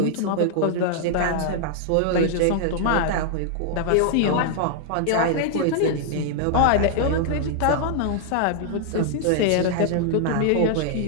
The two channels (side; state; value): both; different; correlation -0.01